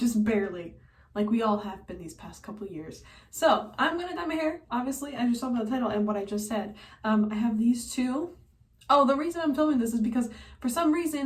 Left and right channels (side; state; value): both; identical; correlation 1.00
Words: barely, like we all have been these past couple years. So I'm gonna dye my hair, obviously, as you saw by the title and what I just said. I have these two. Oh, the reason I'm filming this is because for some